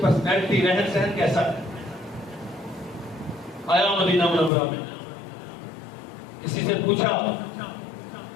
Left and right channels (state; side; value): drops out; right; at 4.5 s